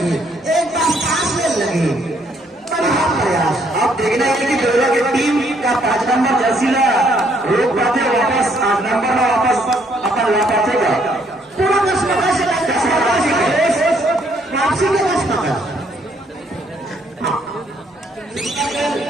एक बार सांस लेने लगी। प्रयास आप देखना है कि बड़ौदा की टीम का 5 नंबर जर्सी ला रोक पाते वापस 8 नंबर में वापस अपन ला पाते का पूरा वापसी के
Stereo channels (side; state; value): both; normal; correlation 0.68